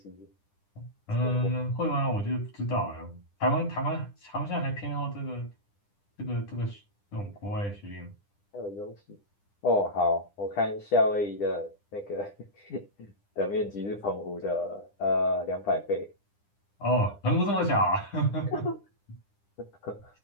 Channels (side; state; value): right; late; 9.9 ms